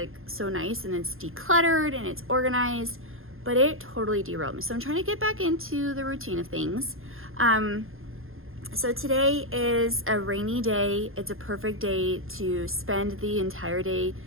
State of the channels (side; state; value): left; late; 0.60 ms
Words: so nice and it's decluttered and it's organized, but it totally derailed me. So I'm trying to get back into the routine of things. So today is a rainy day. It's a perfect day to spend the entire day